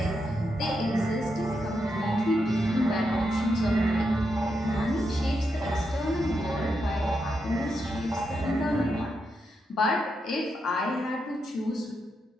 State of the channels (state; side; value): normal; both; correlation 0.84